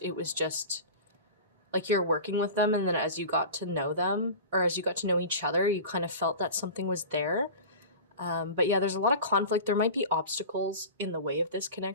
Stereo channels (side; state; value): both; inverted; correlation -0.33